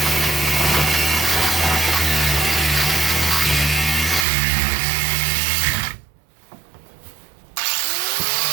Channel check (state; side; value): drops out; left; at 4.2 s